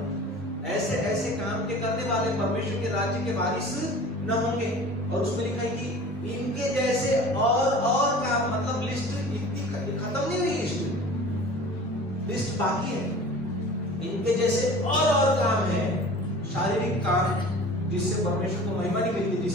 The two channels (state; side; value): normal; both; correlation 0.41